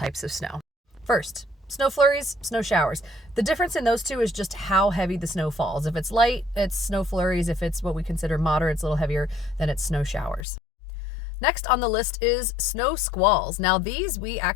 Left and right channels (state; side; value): drops out; right; at 10.5 s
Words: of snow. First, snow flurries, snow showers. The difference in those two is just how heavy the snow falls. If it's light, it's snow flurries. If it's what we consider moderate, it's a little heavier, then it's snow showers. Next on the list is snow squalls. Now these we